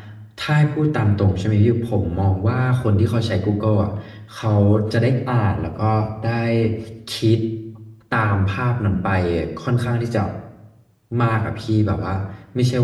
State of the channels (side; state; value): both; identical; correlation 1.00